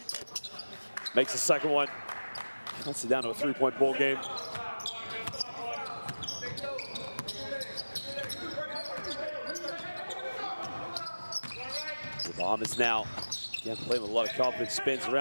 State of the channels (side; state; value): both; inverted; correlation -1.00